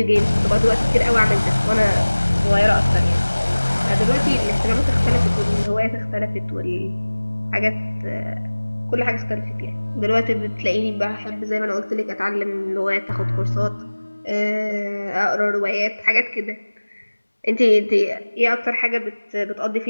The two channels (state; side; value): inverted; both; correlation -1.00